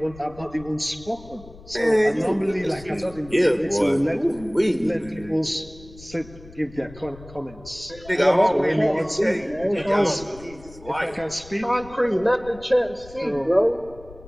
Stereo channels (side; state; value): left; noise; rumble, 20 dB below the sound